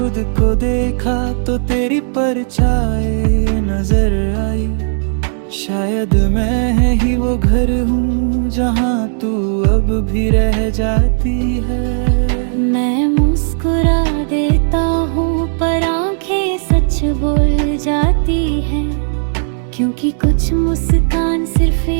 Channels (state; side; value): silent; left; digital silence